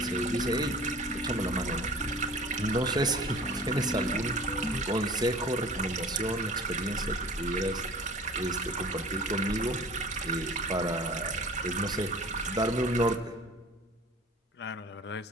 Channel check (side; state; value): both; normal; correlation 0.44